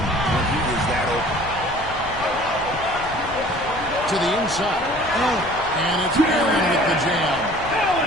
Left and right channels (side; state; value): left; noise; rumble, 15 dB below the sound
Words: when he is that open. To the inside. And it's Allen with the jam.